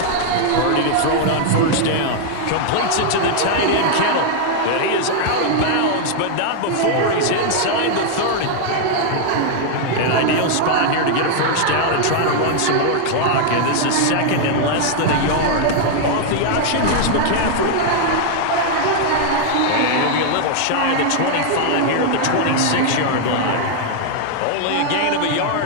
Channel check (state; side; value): different; both; correlation 0.00